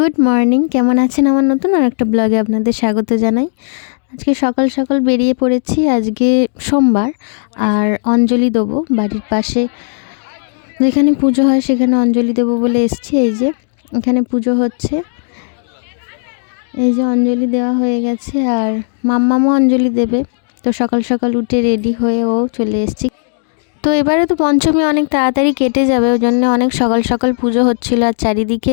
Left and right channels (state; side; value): silent; right; digital silence